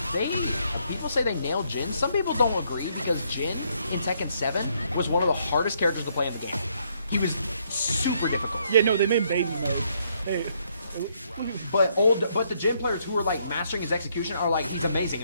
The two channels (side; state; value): both; inverted; correlation -0.71